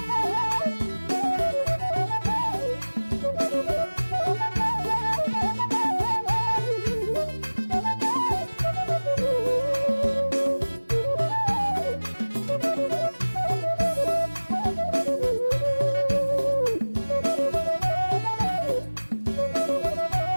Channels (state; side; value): inverted; both; correlation -1.00